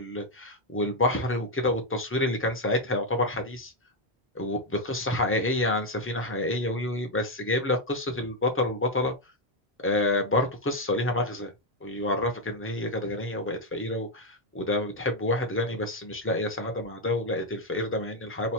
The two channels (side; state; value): both; normal; correlation 0.03